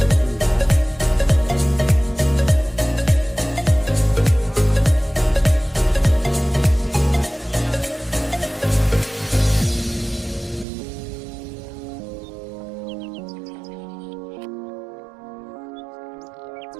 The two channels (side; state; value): left; drops out; at 10.7 s